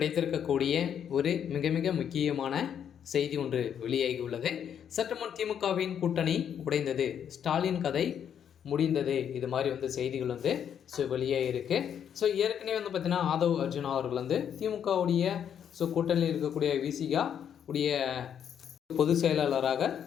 ஒரு மிக மிக முக்கியமான செய்தி ஒன்று வெளியாகியுள்ளது. சற்று முன் திமுகவின் கூட்டணி உடைந்தது, ஸ்டாலின் கதை முடிந்தது, இது மாதிரி செய்திகள் வெளியாகிருக்கு. ஏற்கனவே பார்த்தீங்கன்னா ஆதவ் அர்ஜுனா அவர்கள் திமுகவுடைய கூட்டணியில் இருக்கக்கூடிய விசிகா உடைய பொதுச் செயலாளராக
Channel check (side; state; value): right; quieter; 8.7 dB